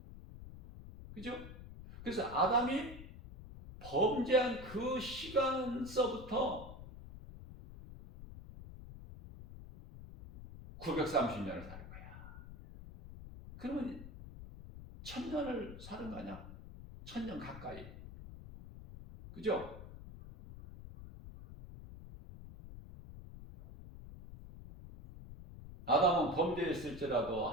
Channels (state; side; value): noise; left; rumble, 13 dB below the sound